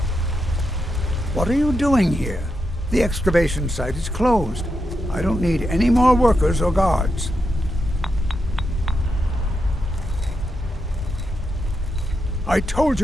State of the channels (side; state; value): both; normal; correlation 0.85